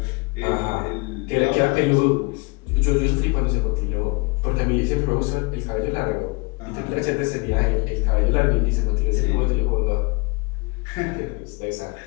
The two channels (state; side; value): quieter; right; 28.8 dB